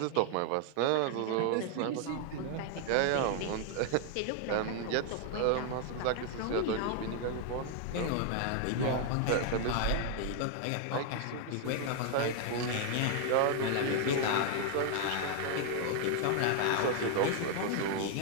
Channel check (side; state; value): both; different; correlation 0.00